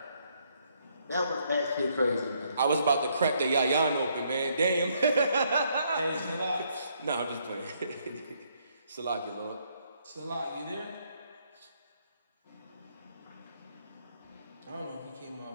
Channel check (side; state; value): both; inverted; correlation -0.71